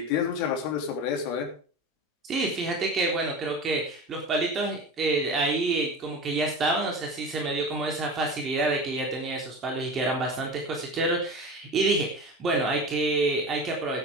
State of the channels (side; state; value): both; normal; correlation 0.31